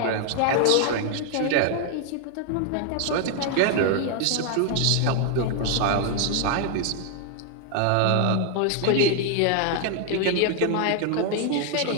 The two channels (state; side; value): different; both; correlation 0.00